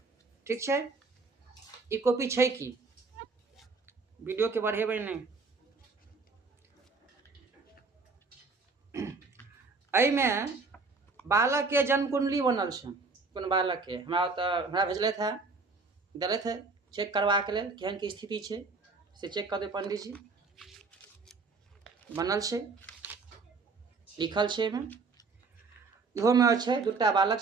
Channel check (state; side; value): quieter; left; 4.2 dB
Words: ठीक छै। ई कॉपी छै कि वीडियो के बढ़ेबै नहीं। एहिमे बालक के जन्म कुंडली बनल छै। कोन बालक के हमरा भेजलथि है, देलथि है चेक करवा के लेल केहन की स्थिति छै से चेक कर दे पंडित जी। बनल छै, लिखल छै एहिमे। इहो में छै दूटा बालक